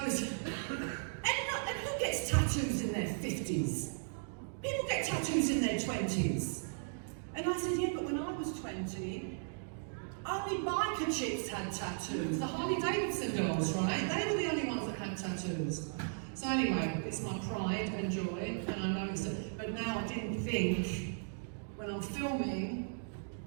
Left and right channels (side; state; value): left; silent; digital silence